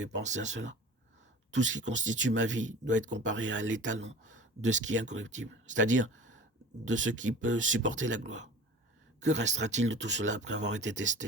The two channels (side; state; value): both; normal; correlation 0.39